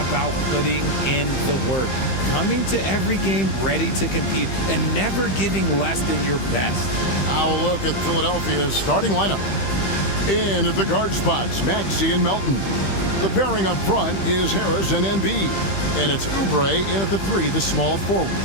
putting in the work, coming to every game ready to compete, and never giving less than your best. Now a look at Philadelphia's starting lineup. In at the guard spots, Maxey and Melton. The pairing up front is Harris and Embiid. And it's Oubre in at the 3, the small forward.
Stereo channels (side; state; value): right; late; 15 ms